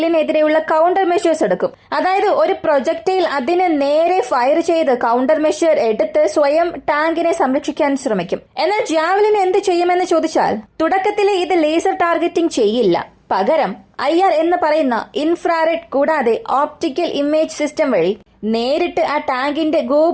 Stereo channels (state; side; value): identical; both; correlation 1.00